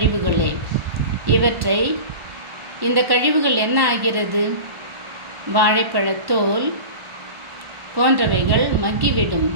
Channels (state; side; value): late; left; 1.4 ms